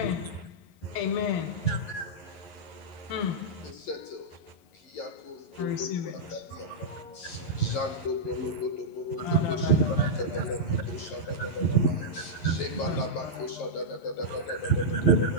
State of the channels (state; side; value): late; right; 11 ms